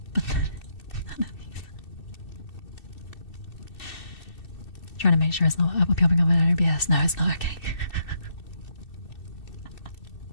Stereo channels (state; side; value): late; right; 2.7 ms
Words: but none of these. Trying to make sure it's not popping up in OBS. No, it's not okay.